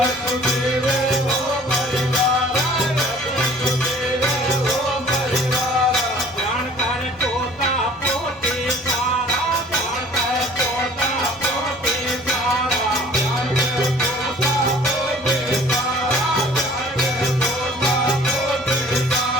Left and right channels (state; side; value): normal; both; correlation 0.51